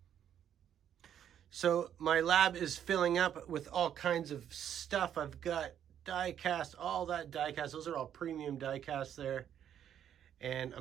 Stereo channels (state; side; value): quieter; left; 9.7 dB